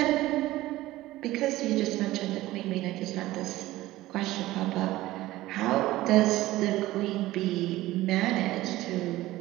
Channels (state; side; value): quieter; left; 16.9 dB